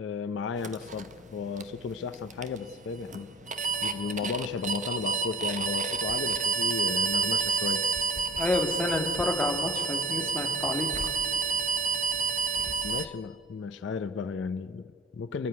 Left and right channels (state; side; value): normal; both; correlation 0.37